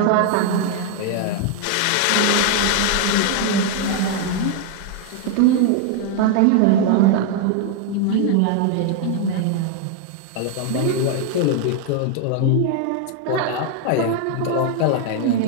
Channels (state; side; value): different; both; correlation 0.00